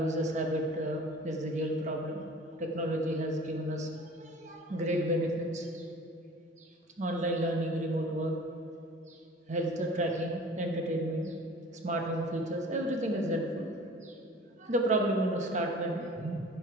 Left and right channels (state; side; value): normal; both; correlation 0.45